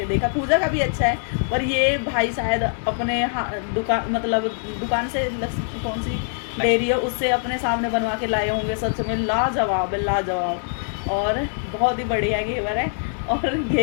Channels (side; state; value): right; silent; digital silence